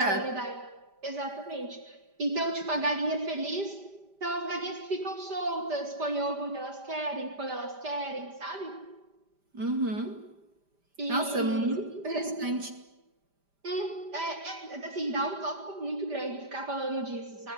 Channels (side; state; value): left; late; 5.0 ms